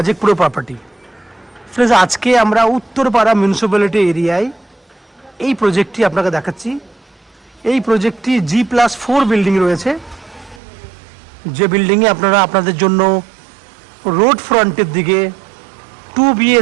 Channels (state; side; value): drops out; left; at 10.6 s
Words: pro property. Friends आज के আমরা উত্তরপাড়া মিউনিসিপ্যালিটি এরিয়ায় এই প্রজেক্টটি আপনাকে দেখাচ্ছি। এই প্রজেক্টটি G+4 বিল্ডিং রয়েছে, যে বিল্ডিংয়ে আপনারা আপনাদের জন্য রোড ফ্রন্টের দিকে 2